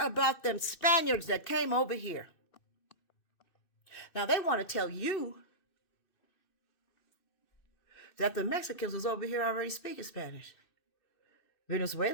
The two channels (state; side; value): late; right; 2.6 ms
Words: about them Spaniards that came over here. Now they want to tell you that the Mexicans was over here already speaking Spanish.